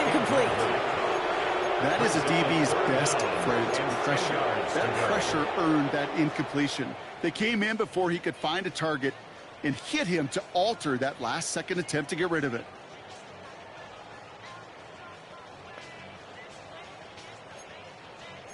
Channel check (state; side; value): identical; both; correlation 1.00